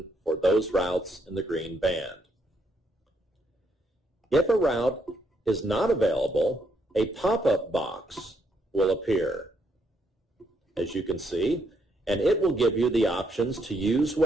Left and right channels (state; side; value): normal; both; correlation 0.75